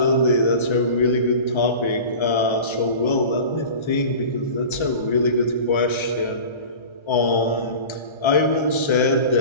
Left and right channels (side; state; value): right; late; 1.3 ms